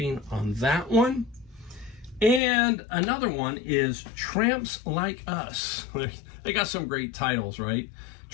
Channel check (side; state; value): right; drops out; at 2.4 s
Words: on that one. And another one is Tramps Like Us. They got some great titles, right?